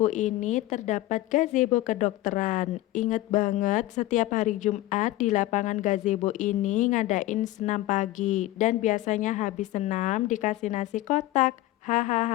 ini terdapat gazebo kedokteran. Ingat banget setiap hari Jumat di lapangan gazebo ini ngadain senam pagi dan biasanya habis senam dikasih nasi kotak,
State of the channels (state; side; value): quieter; right; 16.6 dB